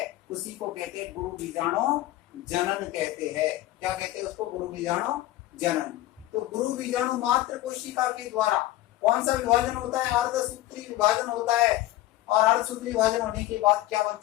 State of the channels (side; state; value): right; quieter; 15.9 dB